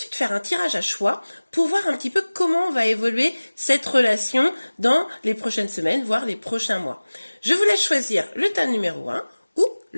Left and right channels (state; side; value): inverted; both; correlation -1.00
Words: faire un tirage à choix pour voir un petit peu comment va évoluer cette relation dans les prochaines semaines, voire les prochains mois. Je vous laisse choisir le tas numéro 1 ou